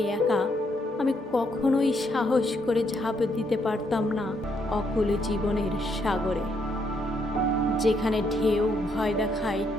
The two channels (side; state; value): both; normal; correlation 0.74